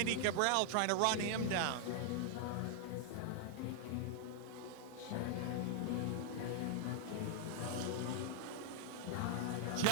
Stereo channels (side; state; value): both; different; correlation 0.00